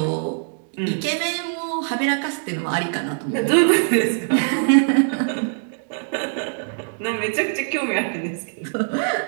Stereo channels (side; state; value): left; silent; digital silence